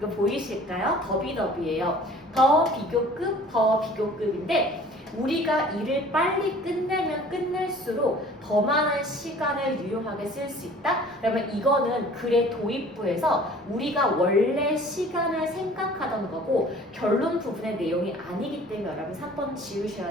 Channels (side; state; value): both; normal; correlation 0.49